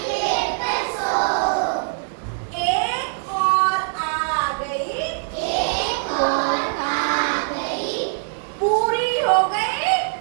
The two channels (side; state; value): left; silent; digital silence